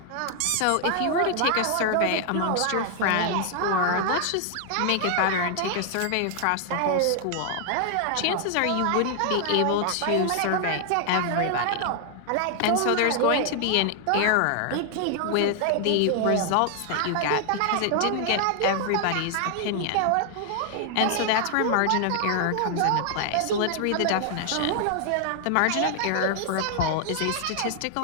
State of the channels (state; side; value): different; both; correlation 0.00